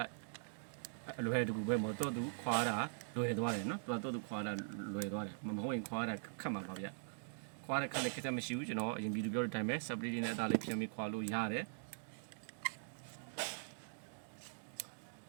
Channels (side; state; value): left; silent; digital silence